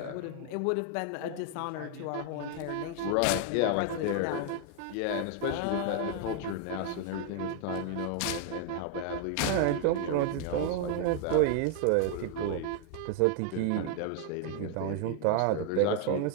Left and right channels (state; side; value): different; both; correlation 0.00